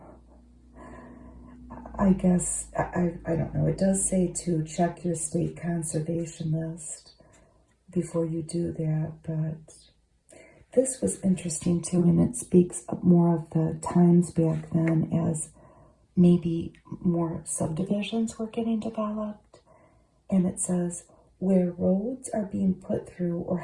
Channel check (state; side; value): identical; both; correlation 1.00